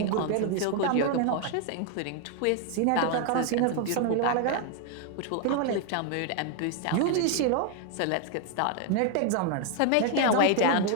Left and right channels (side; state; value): both; different; correlation 0.00